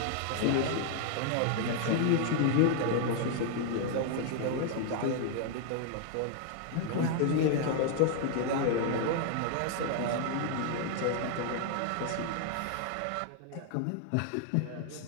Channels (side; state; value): both; different; correlation 0.00